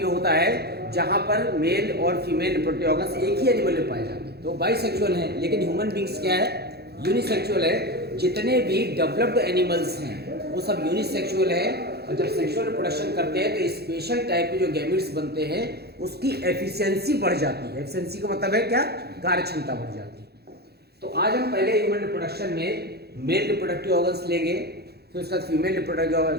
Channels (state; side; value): late; left; 0.47 ms